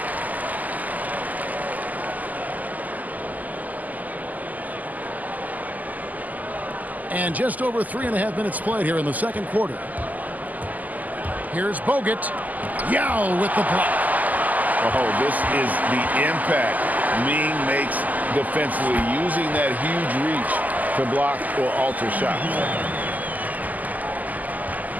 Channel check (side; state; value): left; late; 0.080 ms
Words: And just over 3.5 minutes played here in the second quarter. Here's Bogut. Yao with the block. Oh, this is the impact Ming makes defensively, using that huge reach to block or alter shots.